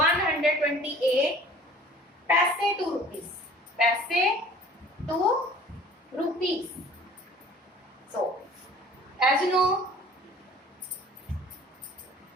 paise to rupees. So, as you know,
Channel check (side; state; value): both; normal; correlation 0.48